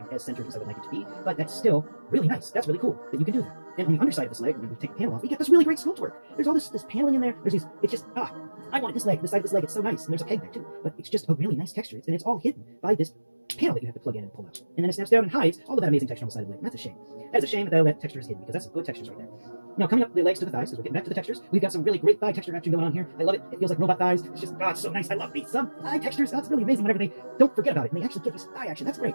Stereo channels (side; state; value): both; inverted; correlation -1.00